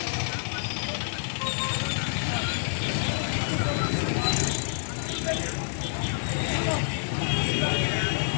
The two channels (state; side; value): silent; right; digital silence